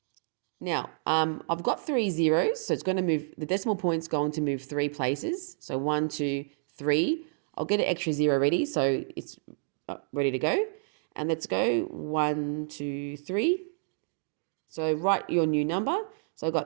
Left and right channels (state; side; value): silent; left; digital silence